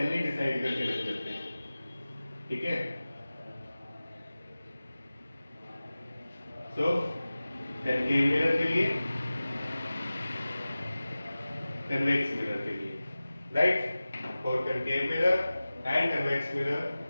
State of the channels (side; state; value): both; inverted; correlation -0.97